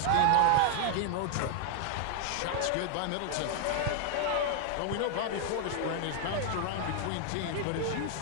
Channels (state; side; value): different; both; correlation 0.00